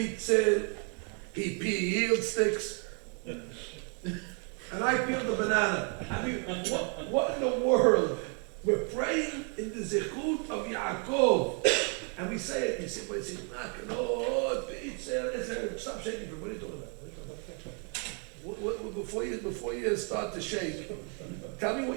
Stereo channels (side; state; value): left; quieter; 39.7 dB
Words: he peeled sticks. And I peeled the banana. I mean, what in the world? We're praying in the Zechut of Yaakov. And we say it, you say, well, it's Makalot, B'Itzel, stop shaking, what are you talking about? Before you start to shake, tell me